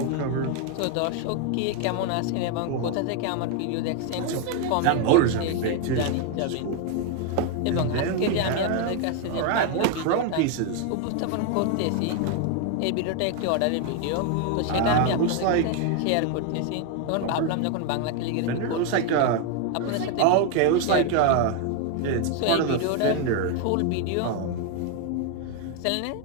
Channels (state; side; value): different; both; correlation 0.01